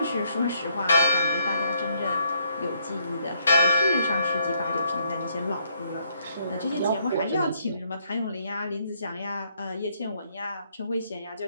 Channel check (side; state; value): both; inverted; correlation -0.71